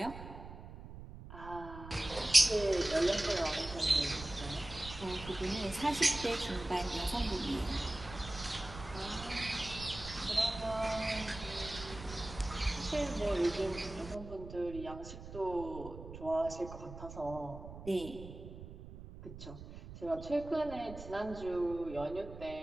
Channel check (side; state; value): right; noise; rumble, 13 dB below the sound